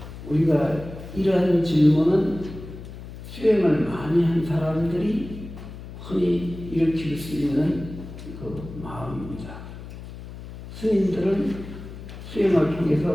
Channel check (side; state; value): left; noise; hum, 13 dB below the sound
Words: 우리가 이러한 질문은 수행을 많이 한 사람들이 흔히 일으킬 수 있는 그 마음입니다. 스님들은 수행을